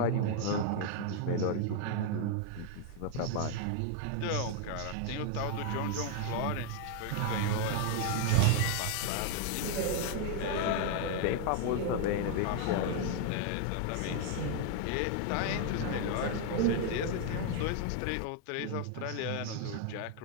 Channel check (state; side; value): different; both; correlation 0.00